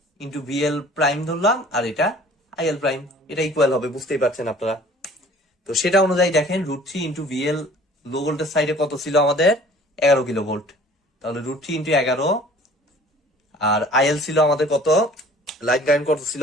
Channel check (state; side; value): normal; both; correlation 0.50